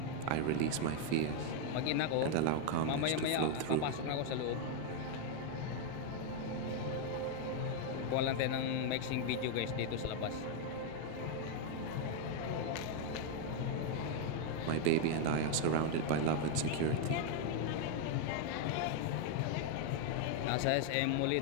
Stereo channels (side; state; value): both; different; correlation 0.01